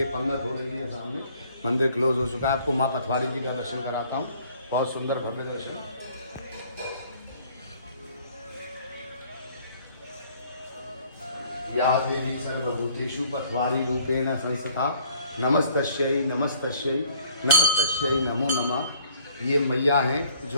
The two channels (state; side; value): inverted; both; correlation -0.57